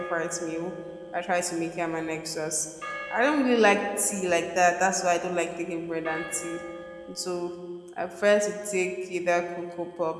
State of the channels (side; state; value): both; identical; correlation 1.00